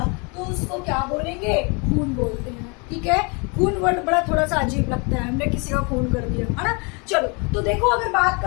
तो उसको क्या बोलेंगे, खून बोलते हैं। ठीक है, खून वर्ड बड़ा थोड़ा सा अजीब लगता है, हमने किसी का खून कर दिया है ना। चलो तो देखो अगर बात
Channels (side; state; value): right; quieter; 31.9 dB